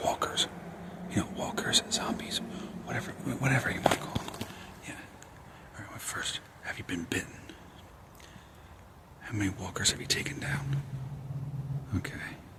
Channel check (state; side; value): identical; both; correlation 1.00